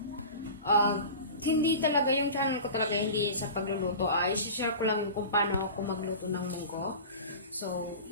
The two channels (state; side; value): inverted; both; correlation -0.34